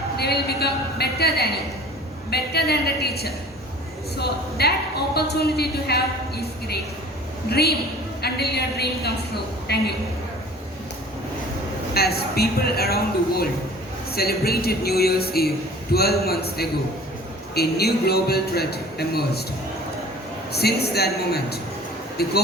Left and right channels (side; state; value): both; normal; correlation 0.46